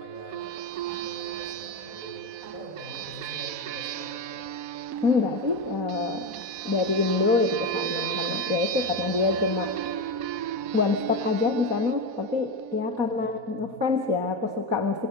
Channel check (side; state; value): left; late; 4.1 ms